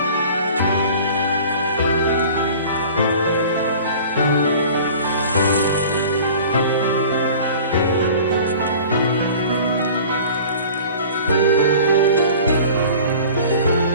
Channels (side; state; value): both; inverted; correlation -0.43